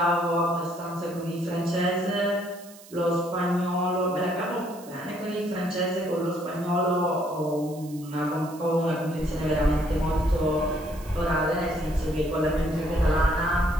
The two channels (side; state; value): right; noise; hiss, 21 dB below the sound